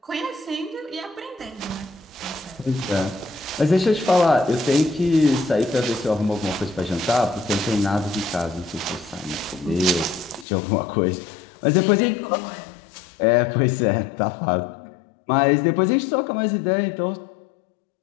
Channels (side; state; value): right; drops out; at 10.5 s